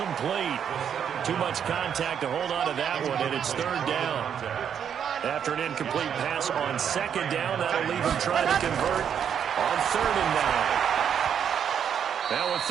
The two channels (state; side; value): quieter; left; 8.3 dB